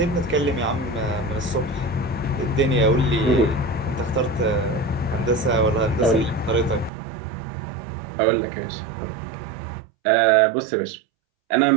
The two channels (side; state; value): left; drops out; at 6.9 s